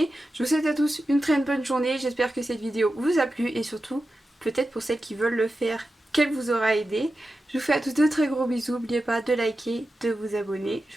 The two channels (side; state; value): both; normal; correlation 0.92